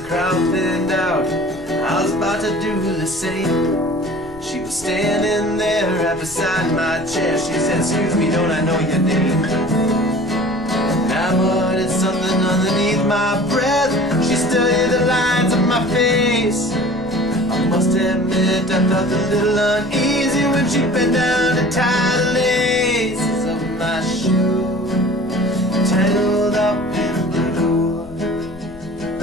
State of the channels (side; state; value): left; noise; rumble, 19 dB below the sound